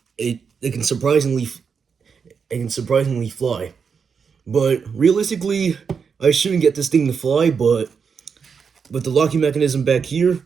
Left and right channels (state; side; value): quieter; left; 6.1 dB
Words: It can surprisingly fly. But realistically, I shouldn't get this thing to fly, but with the locking mechanism back here